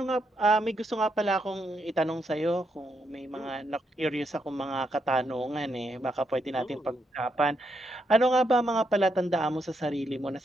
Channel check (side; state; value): both; normal; correlation 0.79